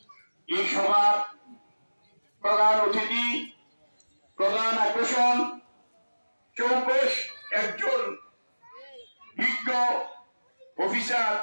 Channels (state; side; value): inverted; both; correlation -1.00